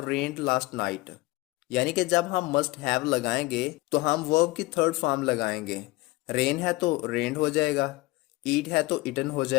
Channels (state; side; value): quieter; right; 20.7 dB